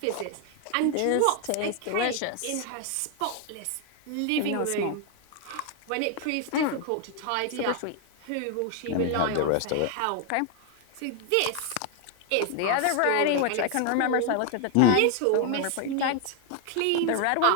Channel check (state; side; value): different; both; correlation 0.00